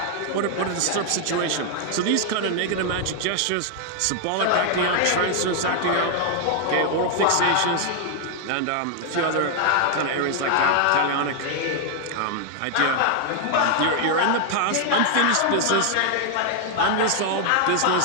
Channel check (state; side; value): different; both; correlation 0.00